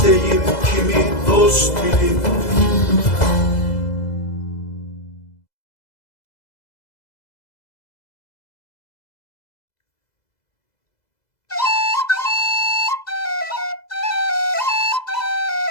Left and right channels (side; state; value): right; late; 2.0 ms